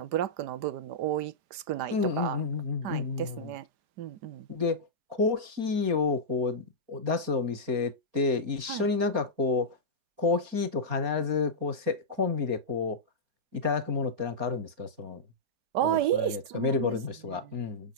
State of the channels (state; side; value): late; left; 5.0 ms